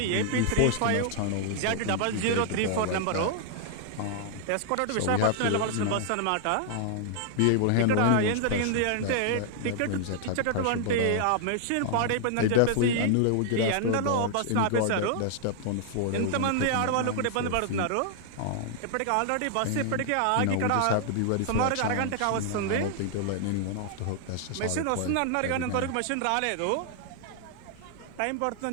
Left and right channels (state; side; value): different; both; correlation -0.01